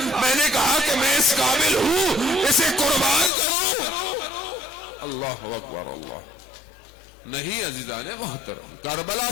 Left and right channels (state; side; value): drops out; right; at 3.3 s